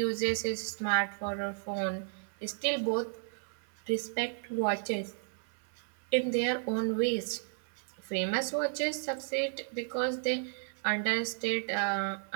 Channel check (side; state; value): left; silent; 55 dB below the other